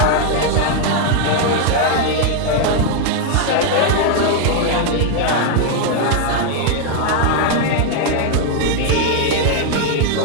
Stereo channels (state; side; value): different; both; correlation 0.00